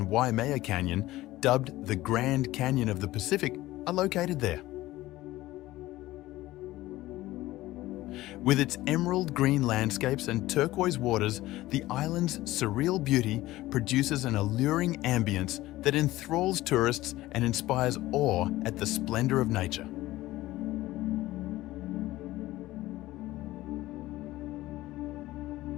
Waimea Canyon, dubbed the Grand Canyon of the Pacific, are located there. With its emerald green landscapes and turquoise waters, the island's surreal beauty produces an alluring ambience that enthralls tourists and inspires awe at the splendor of nature.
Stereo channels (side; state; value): right; quieter; 16.9 dB